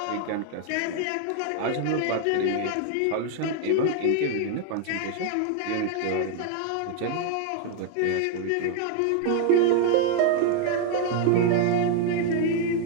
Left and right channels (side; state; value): both; different; correlation 0.00